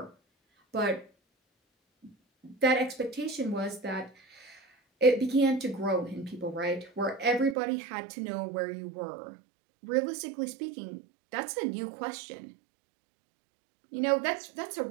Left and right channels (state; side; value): drops out; left; at 7.6 s